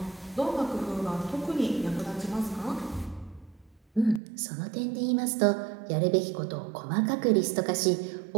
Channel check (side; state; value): left; drops out; at 4.2 s